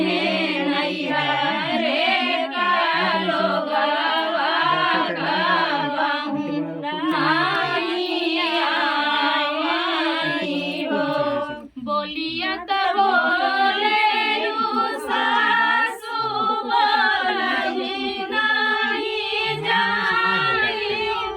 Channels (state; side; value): identical; both; correlation 1.00